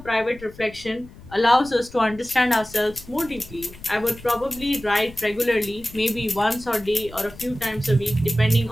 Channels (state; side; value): noise; left; rumble, 19 dB below the sound